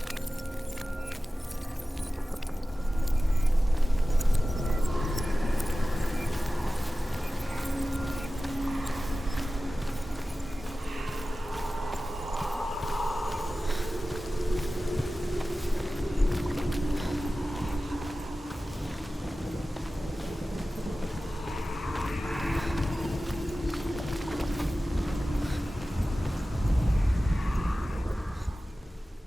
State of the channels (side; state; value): both; normal; correlation 0.96